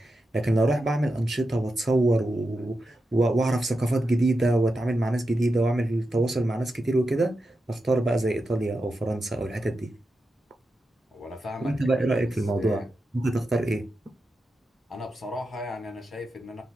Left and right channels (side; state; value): both; normal; correlation 0.89